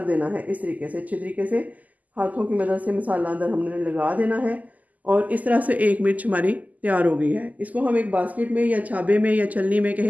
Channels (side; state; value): left; late; 0.078 ms